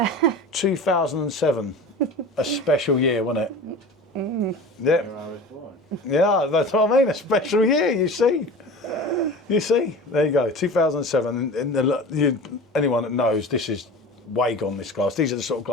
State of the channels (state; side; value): normal; both; correlation 0.36